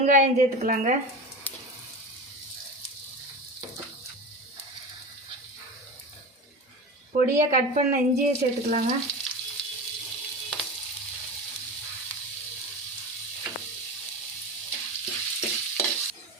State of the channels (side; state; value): both; normal; correlation 0.27